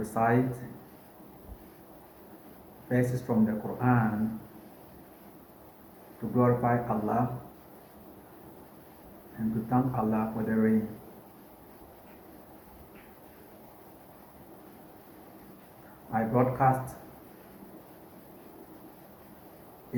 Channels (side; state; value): both; identical; correlation 1.00